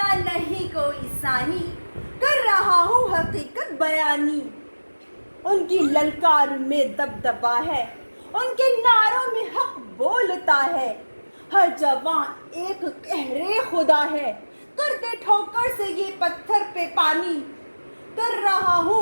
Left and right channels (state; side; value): inverted; both; correlation -1.00